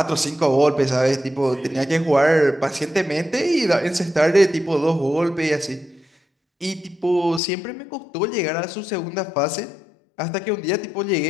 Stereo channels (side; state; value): right; drops out; at 7.4 s